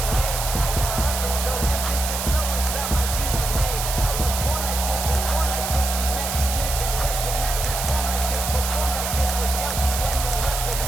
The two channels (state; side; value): noise; right; hiss, 4 dB below the sound